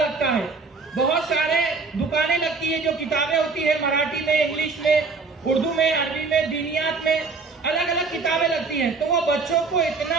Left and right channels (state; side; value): quieter; left; 4.3 dB